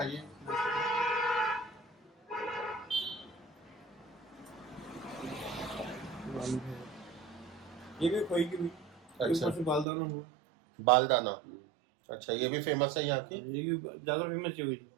ये भी खोई की भी। अच्छा, बालदाना हुआ। बालदाना। अच्छा, ये भी फेमस है यहाँ की? ये भी ज्यादा फेमस है,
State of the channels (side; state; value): left; drops out; at 9.9 s